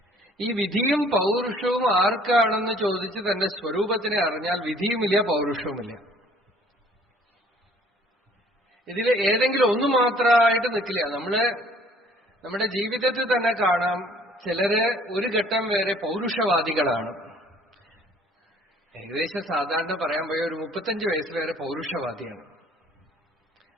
ഈ വിധിയും പൗരുഷവും ആർക്കാണെന്ന് ചോദിച്ച് തന്റെ സ്വരൂപത്തിനെ അറിഞ്ഞാൽ വിധിയുമില്ല പൗരുഷവുമില്ല. ഇതിൽ ഏതെങ്കിലും ഒന്ന് മാത്രമായിട്ട് നിൽക്കില്ല. നമ്മുടെ ജീവിതത്തിൽ തന്നെ കാണാം, ചിലര് ഒരു ഘട്ടം വരെ പൗരുഷവാദികളാണ്. ഏകദേശം സാധാരണ പറയാൻ പോയ ഒരു 35 വയസ്സ് വരെ പൗരുഷവാദിയാണ്.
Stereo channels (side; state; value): both; normal; correlation 0.57